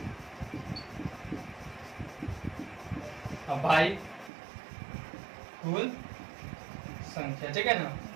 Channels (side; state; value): left; drops out; at 4.3 s